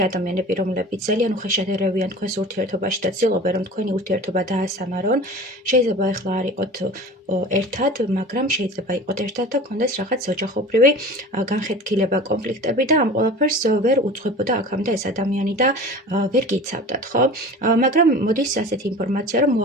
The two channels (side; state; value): both; normal; correlation 0.38